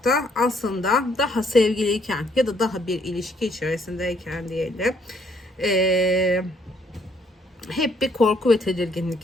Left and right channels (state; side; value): normal; both; correlation 0.67